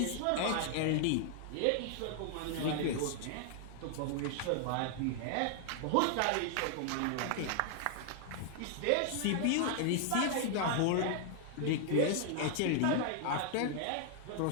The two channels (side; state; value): both; different; correlation 0.00